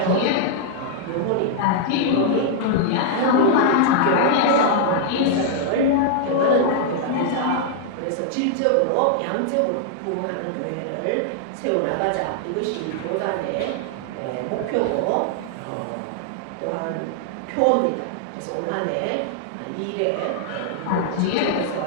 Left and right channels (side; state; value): both; different; correlation -0.01